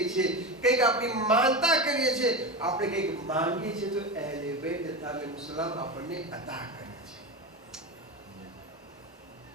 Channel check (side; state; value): both; normal; correlation 0.21